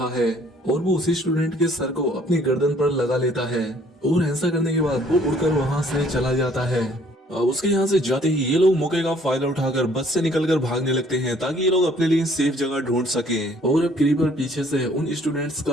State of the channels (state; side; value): normal; both; correlation 0.60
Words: है और वो उसी स्टूडेंट के सर को अपनी गर्दन पर लगा लेता है। और ऐसा करने के बाद वो उड़कर वहाँ से चला जाता है। उसके यहाँ से जाते ही ये लोग मौके का फायदा उठाकर बस से निकलकर भागने लगते हैं, ताकि ये लोग अपने लिए सेफ जगह ढूंढ सकें। और अब क्रीपर पीछे से उन स्टूडेंट्स